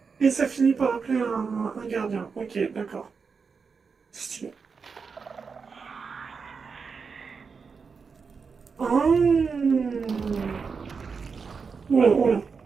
Et ça finit par appeler un gardien. Ok, d'accord. Stylé. Ah. Oula, oula.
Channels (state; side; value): quieter; left; 5.3 dB